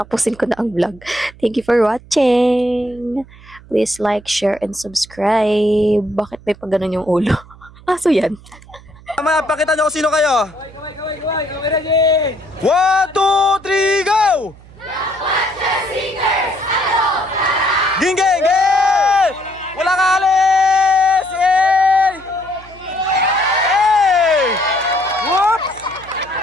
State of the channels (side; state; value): right; noise; hum, 22 dB below the sound